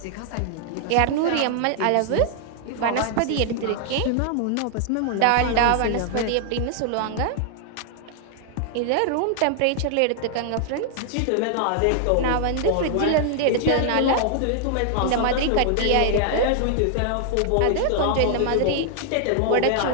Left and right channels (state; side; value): different; both; correlation 0.00